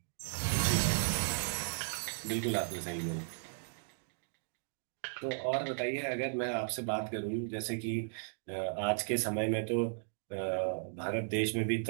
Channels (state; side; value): silent; left; digital silence